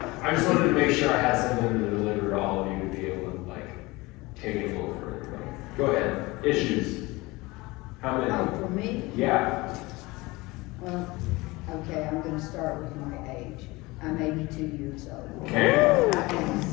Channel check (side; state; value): right; quieter; 22.3 dB